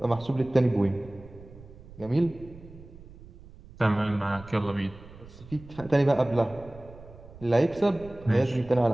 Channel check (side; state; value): right; noise; rumble, 19 dB below the sound